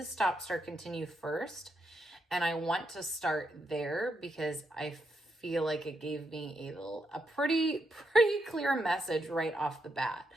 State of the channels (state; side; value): normal; both; correlation 0.81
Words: stop, start, continue first. And I want to start there because I feel like it gave me a pretty clear message right off the bat.